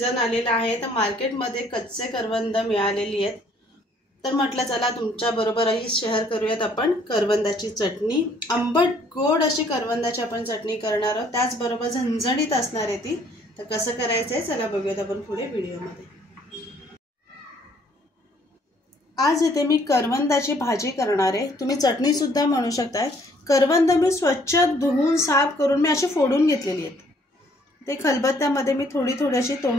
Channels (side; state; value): both; normal; correlation 0.62